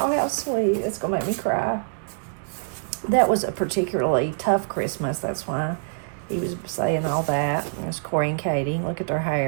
how sweet. That's going to make me cry. That was a particularly tough Christmas. That's why he was saying all that. There's Corey and Katie. Look at their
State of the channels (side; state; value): left; silent; digital silence